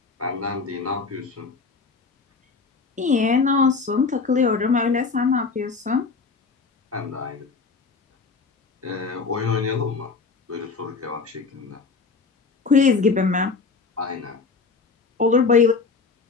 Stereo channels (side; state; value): right; quieter; 4.6 dB